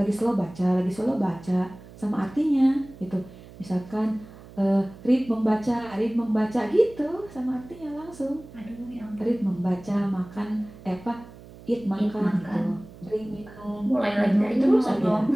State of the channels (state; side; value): noise; right; hum, 19 dB below the sound